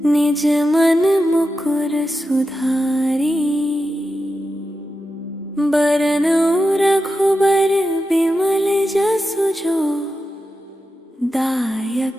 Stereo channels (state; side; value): normal; both; correlation 0.90